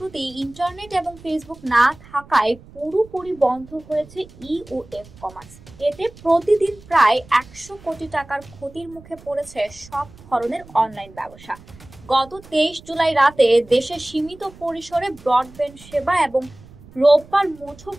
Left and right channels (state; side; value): noise; right; rumble, 22 dB below the sound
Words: ইন্টারনেট এবং ফেসবুক না থাকায় পুরোপুরি বন্ধ হয়েছে ই ও এফ কমার্স। এতে প্রতিদিন প্রায় 100 কোটি টাকার ক্ষতির মুখে পড়েছে সব ধরনের অনলাইন ব্যবসা। গত 23 জুলাই রাতে দেশে সীমিত পরিসরে ব্রডব্যান্ড সেবা এবং রোববার